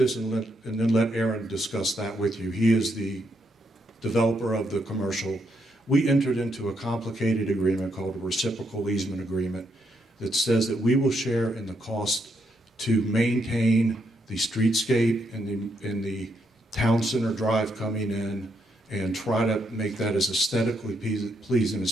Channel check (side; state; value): both; normal; correlation 0.77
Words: and then let Aaron discuss that with you. He is the developer of the commercial. We entered into a complicated agreement called a Reciprocal Easement Agreement that says that we will share in the cost to maintain the streetscape and the town center drive coming in and try to make that as aesthetically pleasing as